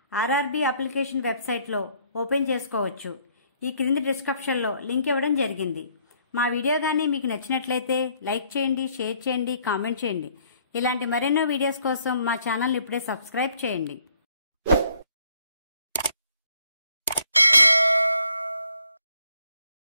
ఆర్ఆర్బీ అప్లికేషన్ వెబ్సైట్లో ఓపెన్ చేసుకోవచ్చు. ఈ క్రింది డిస్క్రిప్షన్లో లింక్ ఇవ్వడం జరిగింది. మా వీడియో కానీ మీకు నచ్చినట్లయితే లైక్ చేయండి, షేర్ చేయండి, కామెంట్ చేయండి. ఇలాంటి మరెన్నో వీడియోస్ కోసం మా ఛానల్ ఇప్పుడే సబ్స్క్రైబ్ చేయండి.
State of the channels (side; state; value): both; inverted; correlation -0.65